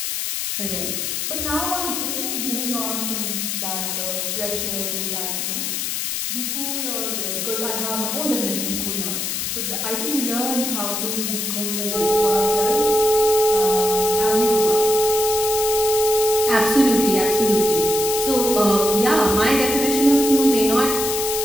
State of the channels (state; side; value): noise; left; hiss, 2 dB below the sound